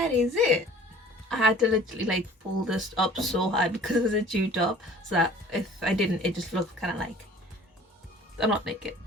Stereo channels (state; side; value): normal; both; correlation 0.49